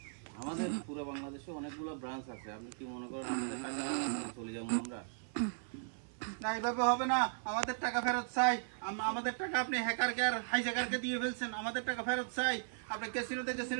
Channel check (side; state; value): left; silent; 53 dB below the other